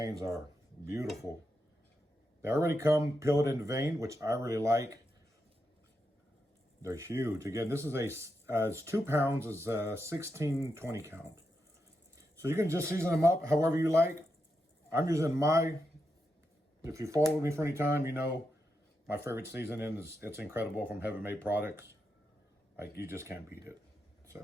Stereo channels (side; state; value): both; normal; correlation 0.85